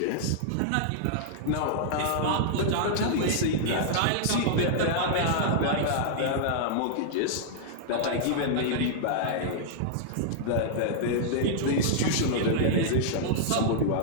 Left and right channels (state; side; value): different; both; correlation -0.01